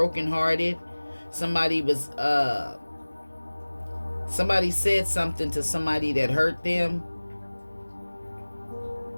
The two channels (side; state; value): both; inverted; correlation -1.00